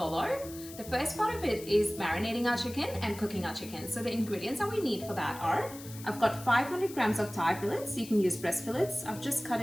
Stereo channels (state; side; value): noise; left; hiss, 15 dB below the sound